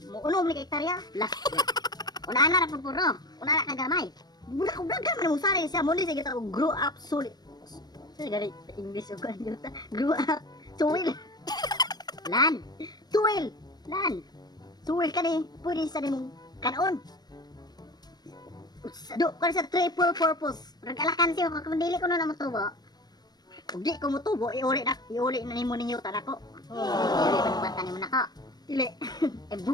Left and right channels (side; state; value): right; late; 0.19 ms